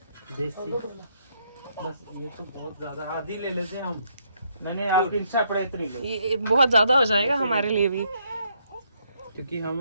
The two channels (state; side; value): inverted; both; correlation -0.73